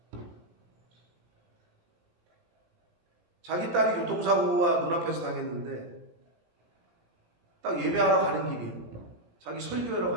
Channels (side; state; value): left; late; 17 ms